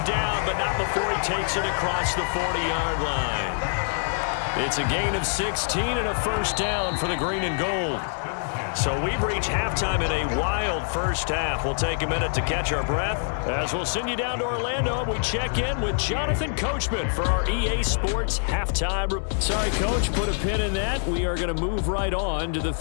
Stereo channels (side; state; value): right; silent; digital silence